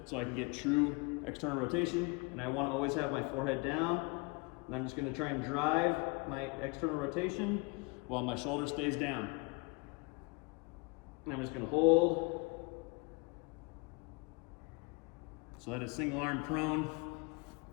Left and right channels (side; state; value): right; quieter; 28.2 dB